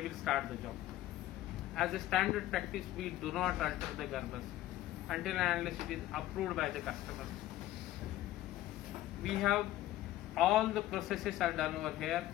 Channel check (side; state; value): right; quieter; 14.8 dB